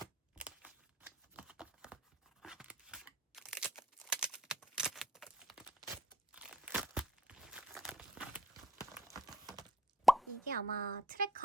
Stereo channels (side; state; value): both; normal; correlation 0.60